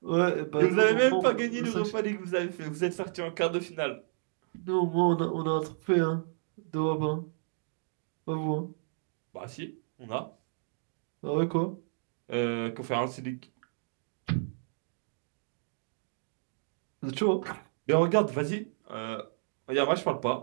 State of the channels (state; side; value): silent; left; digital silence